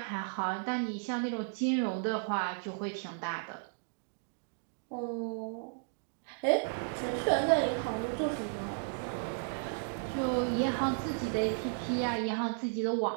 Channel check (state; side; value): silent; left; digital silence